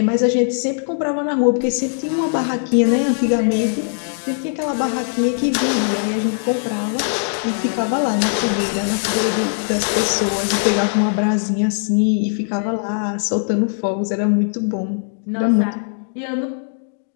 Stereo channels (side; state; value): right; silent; digital silence